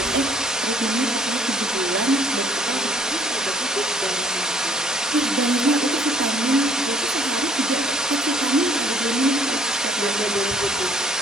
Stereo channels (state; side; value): normal; both; correlation 0.58